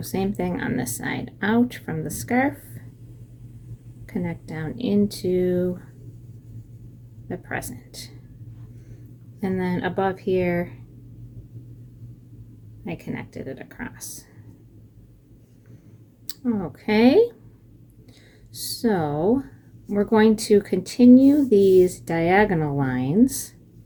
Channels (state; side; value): identical; both; correlation 1.00